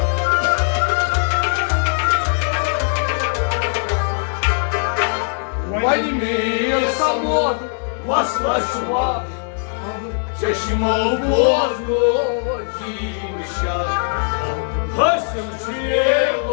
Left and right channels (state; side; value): silent; right; 62 dB below the other